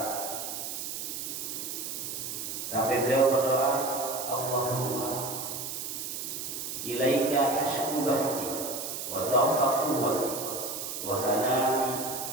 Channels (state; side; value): noise; right; hiss, 5 dB below the sound